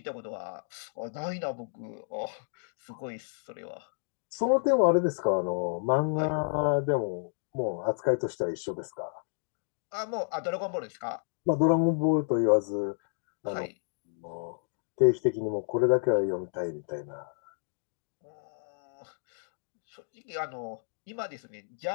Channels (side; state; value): right; silent; digital silence